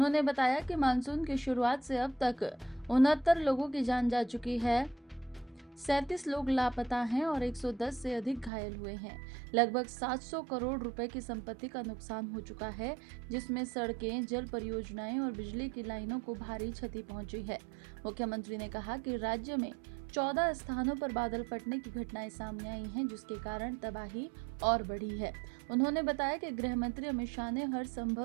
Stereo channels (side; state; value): left; drops out; at 8.5 s